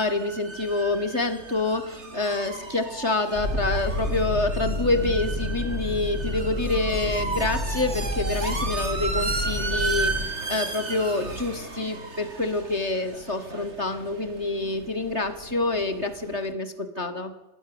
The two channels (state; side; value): late; left; 3.3 ms